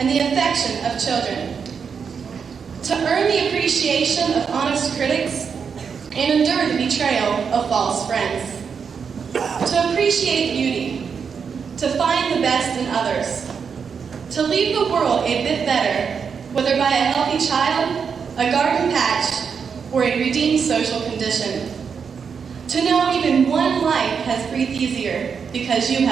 the affection of children, to earn the appreciation of honest critics and endure the betrayal of false friends, to appreciate beauty, to find the best in others, to leave the world a bit better, whether by a healthy child, a garden patch, or a redeemed social condition, to know even one life has breathed easier because you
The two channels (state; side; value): quieter; left; 6.3 dB